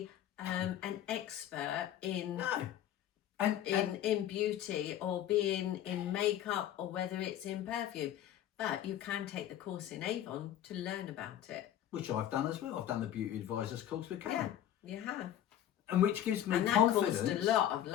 an expert in No. in beauty or being in makeup or whether it's in perfume. But you can take the course in Avon to learn about it. Which I've done as well. I've done the beauty advisors course with Karen. Yeah, you have. And which gives me and that confidence. caused a lot of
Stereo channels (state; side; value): quieter; right; 11.5 dB